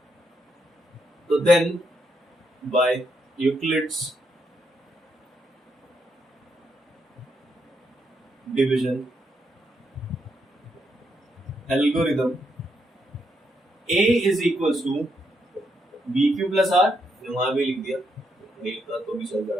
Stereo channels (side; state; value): both; normal; correlation 0.79